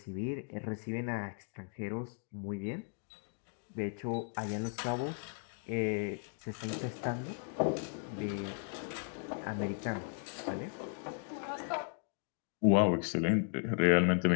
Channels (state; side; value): silent; right; 54 dB below the other